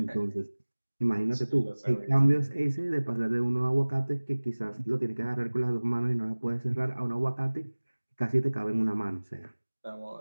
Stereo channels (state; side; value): inverted; both; correlation -1.00